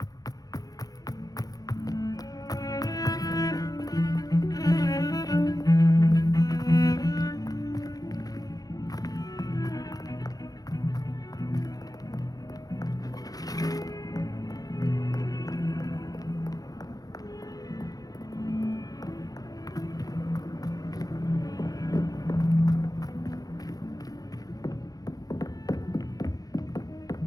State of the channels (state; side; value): late; right; 0.18 ms